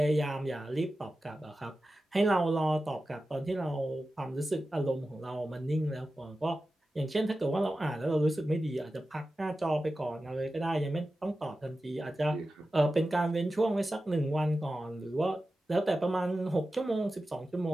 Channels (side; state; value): both; normal; correlation 0.93